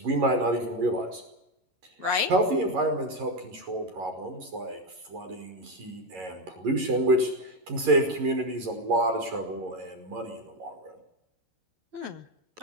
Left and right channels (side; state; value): left; late; 11 ms